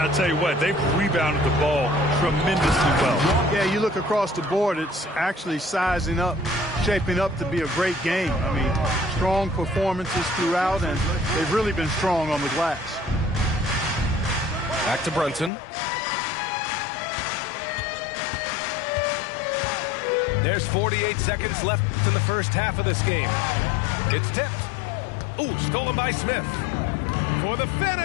tell you what, they've rebounded the ball tremendously well. Yeah, you look across the board, it's actually sizing up, shaping up to be a great game. I mean, strong performances throughout, and they've really been strong on the glass. Back to Brunson. There's 48 seconds left in the first half of this game. It's tipped. Ooh, stolen by Smith. For the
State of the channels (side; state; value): right; drops out; at 15.5 s